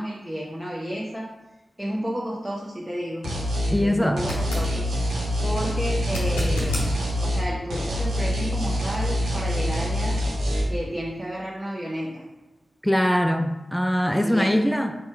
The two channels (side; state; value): both; normal; correlation 0.92